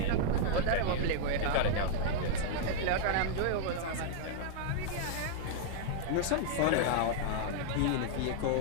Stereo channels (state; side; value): different; both; correlation -0.01